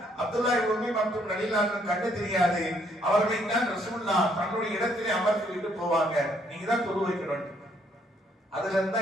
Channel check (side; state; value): both; normal; correlation 0.69